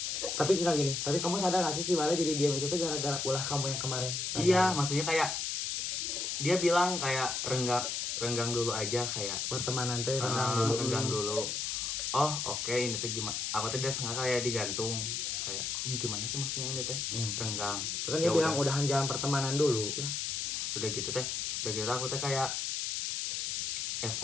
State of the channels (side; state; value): left; noise; hiss, 1 dB below the sound